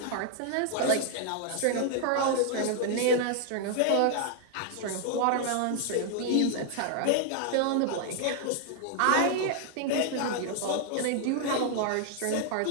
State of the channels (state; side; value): different; both; correlation 0.00